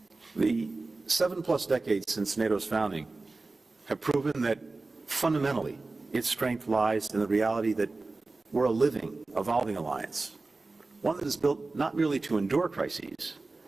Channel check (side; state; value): left; quieter; 3.5 dB